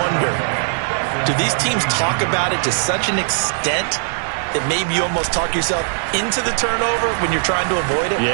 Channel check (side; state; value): left; silent; 66 dB below the other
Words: do these teams talk about it to such an extent that maybe you almost talk yourself into the turnover when you're trying to avoid it?